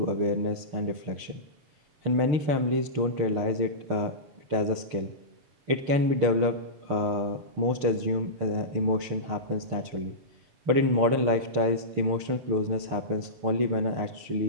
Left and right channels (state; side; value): late; left; 6.7 ms